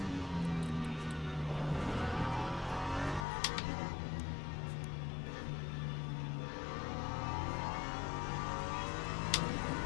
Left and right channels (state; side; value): drops out; right; at 3.2 s